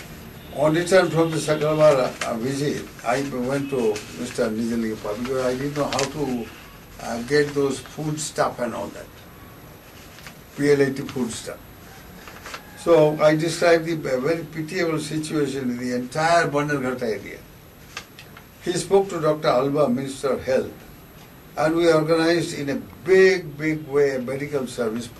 On return from the Sakalavara visit, I went to Mr. Nijalingappa because I didn't know how to get those food stuff and all that. PLAT food stuff. So I described the very pitiable situation in the entire Bannerghatta area. He spoke to Dr. Alba, Minister of Health, and we organized in a big way a medical service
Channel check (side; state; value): both; identical; correlation 1.00